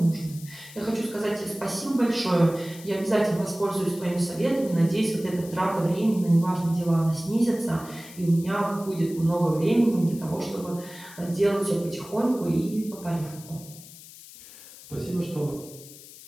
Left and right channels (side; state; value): left; noise; hiss, 18 dB below the sound